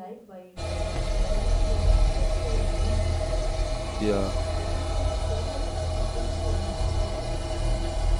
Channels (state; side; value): identical; both; correlation 1.00